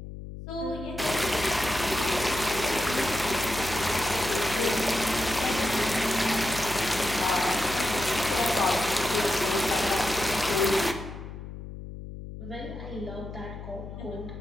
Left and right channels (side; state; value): left; noise; hum, 11 dB below the sound